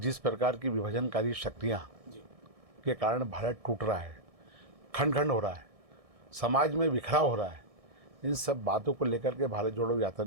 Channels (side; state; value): left; late; 1.6 ms